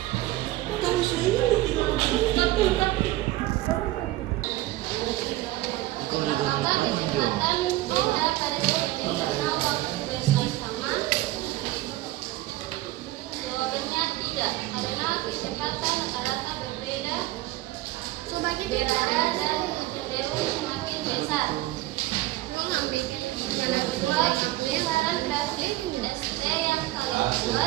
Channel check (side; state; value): left; quieter; 17.1 dB